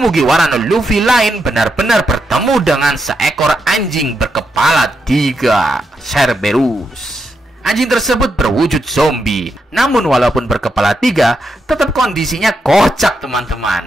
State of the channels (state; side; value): normal; both; correlation 0.83